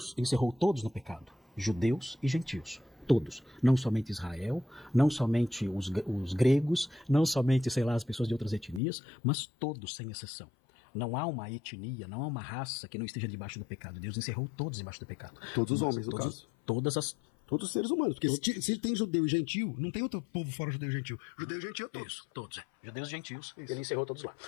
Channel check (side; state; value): right; drops out; at 8.8 s